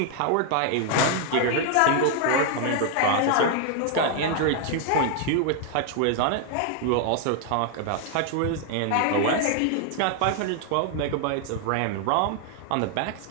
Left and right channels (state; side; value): different; both; correlation 0.00